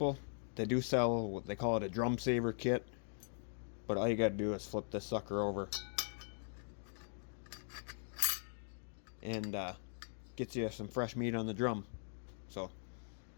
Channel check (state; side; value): silent; right; digital silence